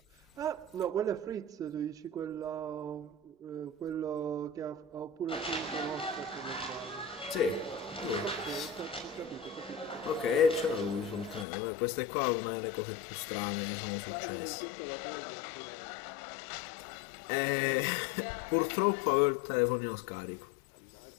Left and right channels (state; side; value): drops out; right; at 11.5 s